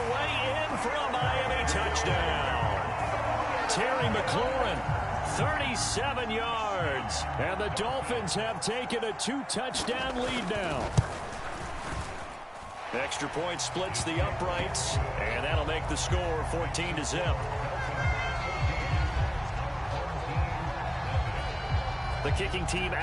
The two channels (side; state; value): both; identical; correlation 1.00